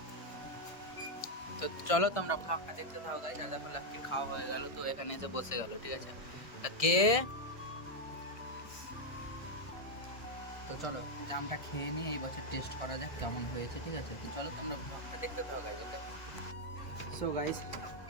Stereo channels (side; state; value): right; late; 1.5 ms